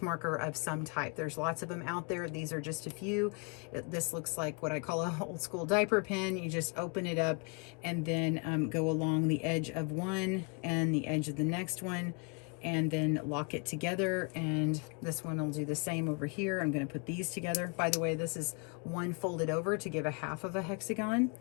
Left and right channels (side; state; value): right; quieter; 33.5 dB